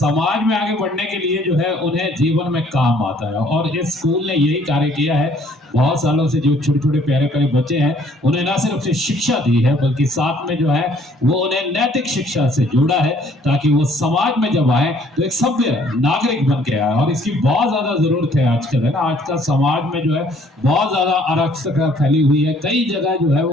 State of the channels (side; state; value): both; normal; correlation 0.61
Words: में आगे बढ़ने के लिए जो है उन्हें जीवन में काम आता है। और इस स्कूल ने यही कार्य किया है। बहुत सालों से जो छोटे छोटे प्यारे प्यारे बच्चे हैं उन्हें ना सिर्फ से शिक्षा दी है बल्कि साथ में जो है वो उन्हें नैतिक शिक्षा से जोड़ा है, ताकि वो समाज में जब आए तो एक सभ्य नागरिक बन के आए। और इसकी बहुत ज्यादा जरूरत है आजकल, है ना। आजकल समाज में जो है बहुत ज्यादा अराजकता फैली हुई है, कई जगह जो है